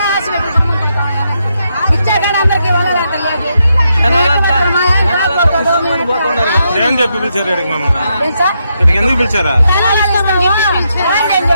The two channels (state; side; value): inverted; both; correlation -0.81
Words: ఇచ్చా కానీ అందరికి ఇవ్వాలి. ఏం చెప్పి పిలిచారు ఇక్కడికి? ఎందుకు పిలిచారా?